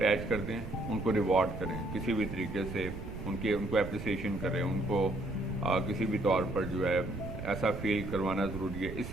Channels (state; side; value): noise; right; rumble, 8 dB below the sound